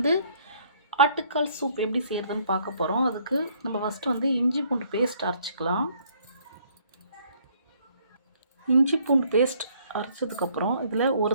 ஆட்டுக்கால் சூப் எப்படி செய்கிறதுன்னு பார்க்க போகிறோம். அதுக்கு நம்ம ஃபஸ்ட்டு இஞ்சி பூண்டு பேஸ்ட் அரைச்சிக்கலாம். இஞ்சி பூண்டு பேஸ்ட் அரைச்சதுக்கப்புறம் இதில் ஒரு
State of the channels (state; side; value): inverted; both; correlation -0.63